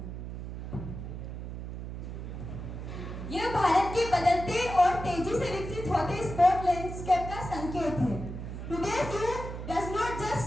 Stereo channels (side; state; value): right; noise; hum, 7 dB below the sound